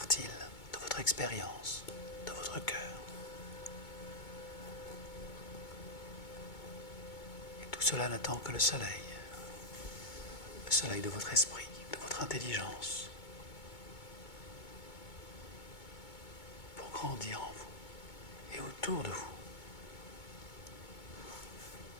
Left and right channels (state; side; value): late; right; 2.2 ms